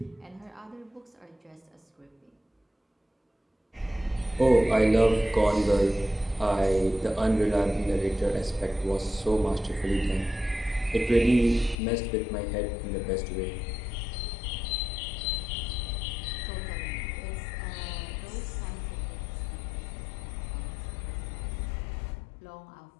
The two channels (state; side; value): drops out; right; at 11.8 s